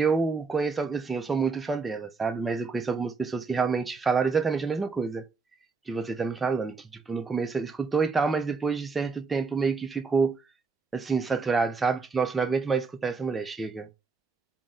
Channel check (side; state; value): left; quieter; 4.6 dB